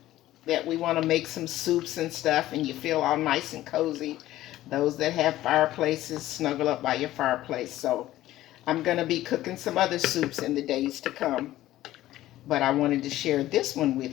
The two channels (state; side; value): quieter; right; 14.9 dB